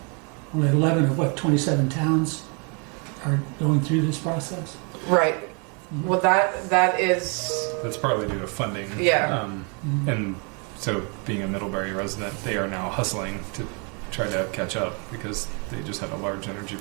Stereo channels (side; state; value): left; quieter; 35.2 dB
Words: 11 of 27 towns are going through this process. Right. Well, that is. That's partly due to funding. Yeah. And so, being a Middlebury resident, they are now hustling to try to catch up because they just had a large energy